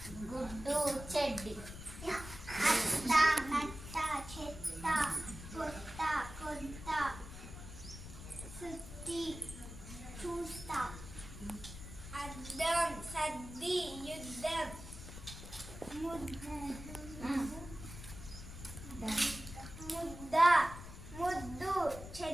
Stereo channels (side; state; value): left; noise; rumble, 12 dB below the sound